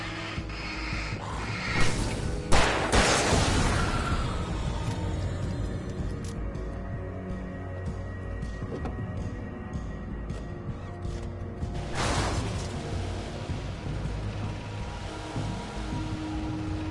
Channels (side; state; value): both; identical; correlation 1.00